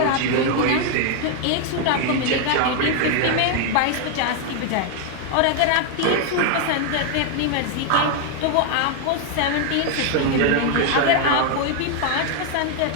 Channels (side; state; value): both; different; correlation 0.00